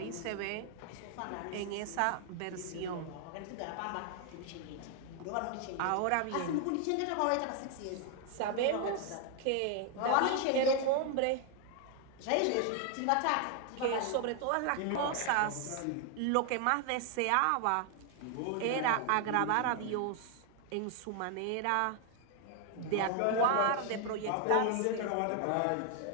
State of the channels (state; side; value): different; both; correlation 0.00